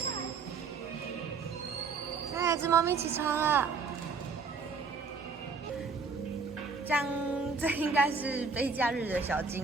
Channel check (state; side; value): quieter; left; 4.9 dB